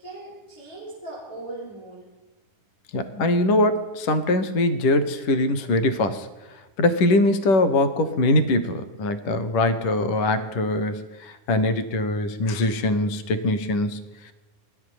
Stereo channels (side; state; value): right; late; 10 ms